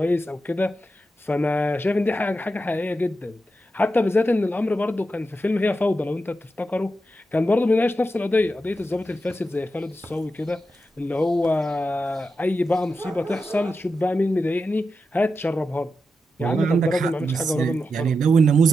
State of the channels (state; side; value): normal; both; correlation 0.88